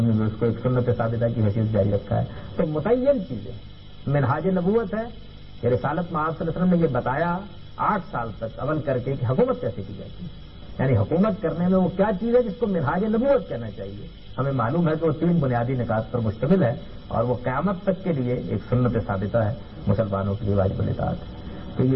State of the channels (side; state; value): both; identical; correlation 1.00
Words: نے بھی اس کو ایک سنت ثابتہ کی حیثیت جاری رکھا ہے. تو متعین چیزیں منہاج نبوت ہے کہ رسالت میں آپ صلی اللہ علیہ وسلم نے یہ بتایا 8 سال تک عمل کر کے کہ حکومت کیسے کی جاتی ہے، یعنی حکومت کرنے میں وہ کیا چیز ہے جس کو منہاج نبوت کہنا چاہیے. ہمیں معلوم ہے کہ وہ 3 بنیادی نکات پر مشتمل ہے اور وہ قیامت تک کے لیے ایک سنت ثابتہ ہے، مسلمانوں کے لیے واجب الاطاعت ہے. تو